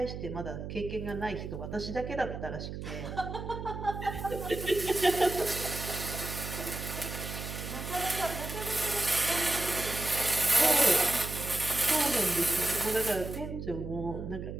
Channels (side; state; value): right; noise; hum, 7 dB below the sound